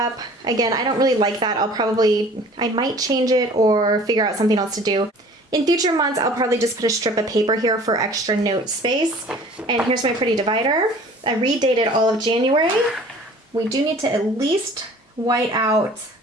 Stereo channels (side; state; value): both; normal; correlation 0.48